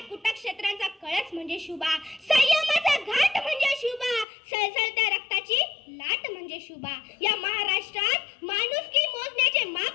कुटक्षेत्रांचा कळस म्हणजे शुभा. संयमाचा घाट म्हणजे शुभा. सळसळत्या रक्ताची लाट म्हणजे शुभा. या महाराष्ट्रात माणुसकी मोजण्याचे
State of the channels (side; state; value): right; drops out; at 4.2 s